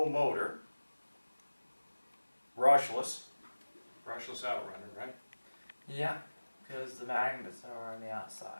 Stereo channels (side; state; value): both; inverted; correlation -1.00